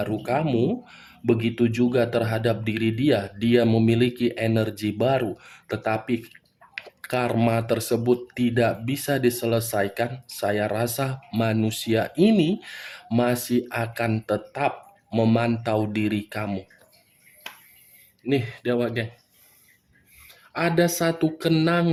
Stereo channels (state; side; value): identical; both; correlation 1.00